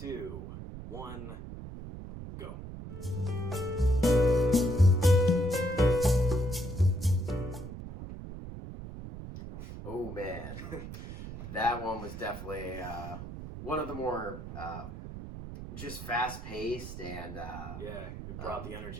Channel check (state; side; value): noise; right; rumble, 10 dB below the sound